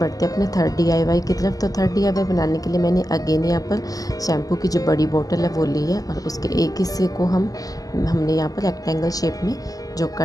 अपने थर्ड DIY की तरफ। तो थर्ड DIY बनाने के लिए मैंने अगेन यहाँ पर शैम्पू की जो बड़ी बोतल है वो ली है, और उसके एक हिस्से को हमने यहाँ पर रेक्टेंगल शेप में जो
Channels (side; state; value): right; late; 0.17 ms